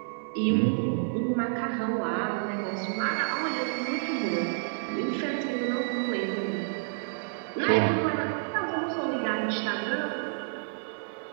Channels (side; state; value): left; silent; digital silence